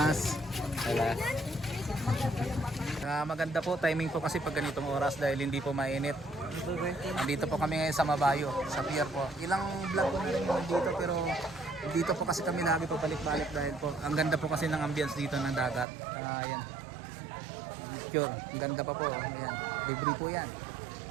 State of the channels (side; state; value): left; drops out; at 15.9 s